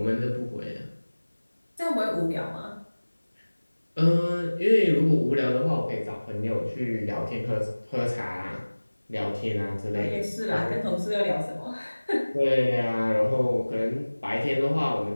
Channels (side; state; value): both; inverted; correlation -1.00